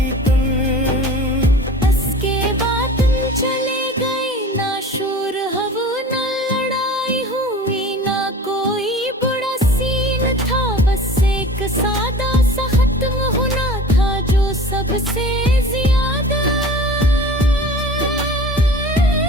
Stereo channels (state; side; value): normal; both; correlation 0.40